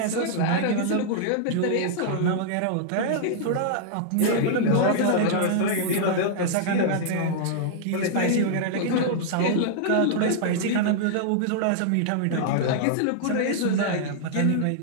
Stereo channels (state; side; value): different; both; correlation -0.01